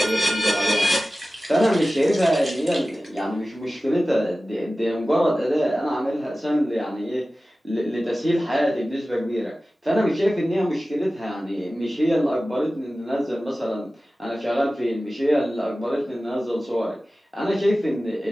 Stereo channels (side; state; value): both; normal; correlation 0.96